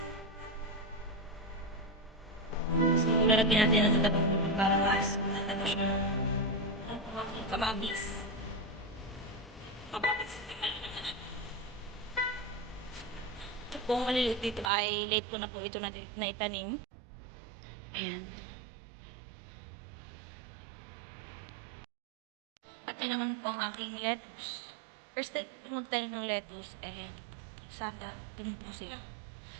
So, lalagyan natin ang matabang lupa para mas mataba siya. Kamabis. Kamabis. Kung maliliit dito ay late ko na po ito na itanim. Ayan. At yun naman po ang aking lettuce. First time magtanim ng lettuce, sana ganun po siya.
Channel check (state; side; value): drops out; left; at 14.7 s